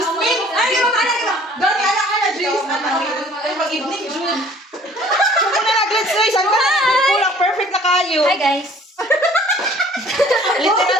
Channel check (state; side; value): normal; both; correlation 0.53